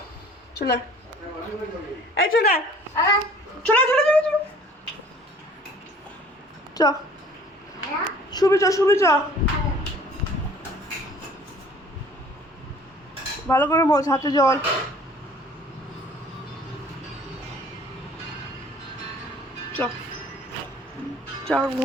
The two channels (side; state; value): both; normal; correlation 0.51